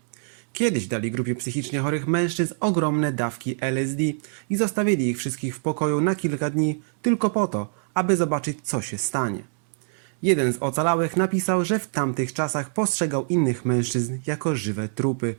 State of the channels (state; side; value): silent; left; digital silence